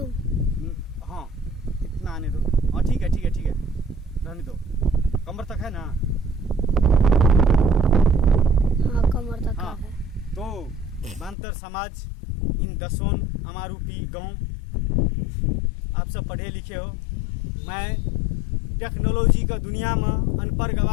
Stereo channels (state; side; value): drops out; right; at 11.4 s